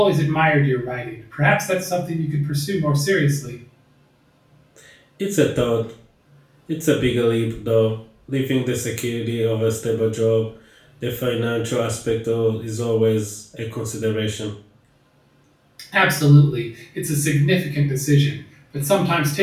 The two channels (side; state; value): both; identical; correlation 1.00